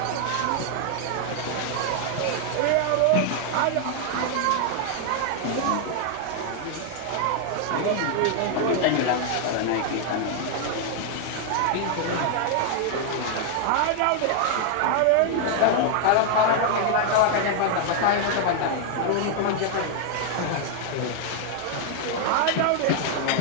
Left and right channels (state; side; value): different; both; correlation 0.00